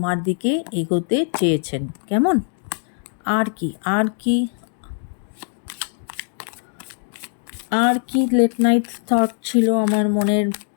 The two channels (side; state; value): right; silent; 57 dB below the other